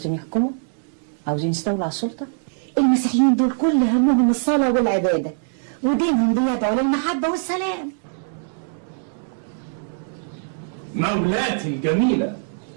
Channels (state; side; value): silent; left; digital silence